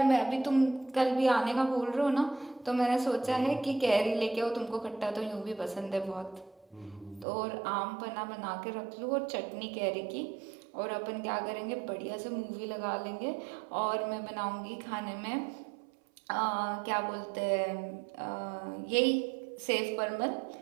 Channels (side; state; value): left; drops out; at 7.2 s